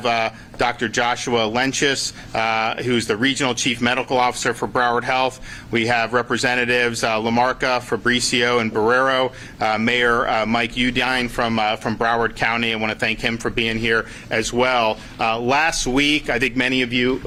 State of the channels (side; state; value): both; identical; correlation 1.00